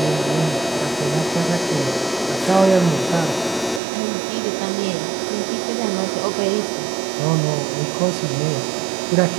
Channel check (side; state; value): left; drops out; at 3.8 s